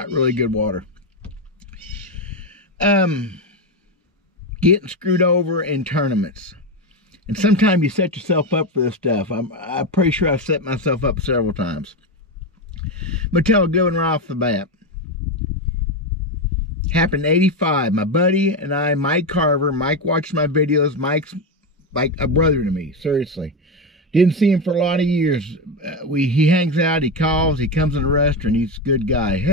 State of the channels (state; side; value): normal; both; correlation 0.12